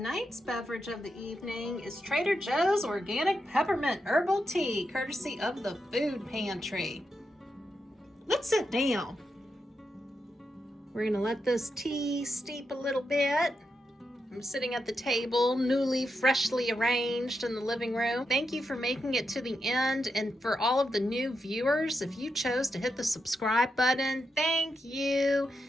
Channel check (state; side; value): normal; both; correlation 0.85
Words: beverage of the evening is Trader Joe's Organic Peppermint Herbal Tea, courtesy of the food pantry. Let's sit down. We're gonna let this tea steep a little bit. I'm sitting at the table, newly, freshly arranged in the living room. Thank you for making it to the end, and for all of the new viewers, if you chose to hit the subscribe button, thank you.